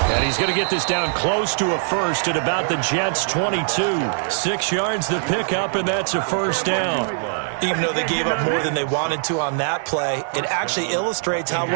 And he's going to get this down close to a first at about the Jets' 22. 6 yards to pick up, and that's a 1st down. Even though they gave up more than they wanted to on that play, it actually illustrates how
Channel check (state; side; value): silent; left; digital silence